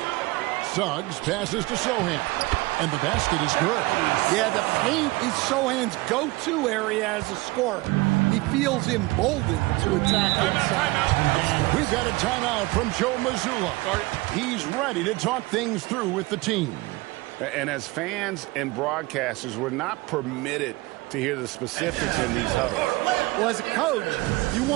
Suggs passes to Sohan. And the basket is good. Yeah, the paint is Sohan's go-to area as a scorer. He feels emboldened to attack inside. We've got a timeout from Joe Mazzulla. He's ready to talk things through with the team. And as fans and broadcasters, we're not permitted to hear the specifics in these huddles. Well, as a coach, you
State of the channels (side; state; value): left; quieter; 22.1 dB